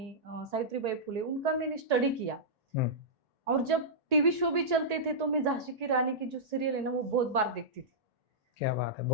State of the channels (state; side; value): late; left; 1.8 ms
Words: सावित्रीबाई फुले, उनका मैंने स्टडी किया। और जब टीवी शो भी चलते थे तो मैं झांसी की रानी की जो सीरियल है ना, वो बहुत बार देखती थी। क्या बात है,